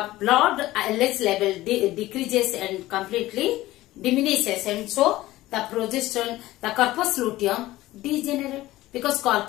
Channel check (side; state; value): right; quieter; 16.8 dB